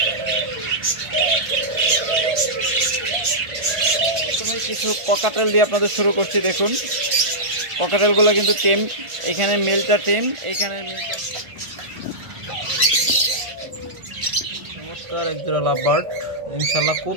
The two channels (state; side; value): late; left; 1.5 ms